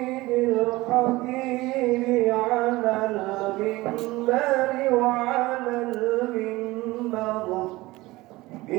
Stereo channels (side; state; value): left; quieter; 19.8 dB